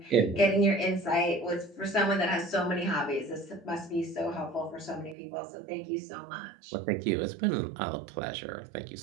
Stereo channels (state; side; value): drops out; left; at 5.2 s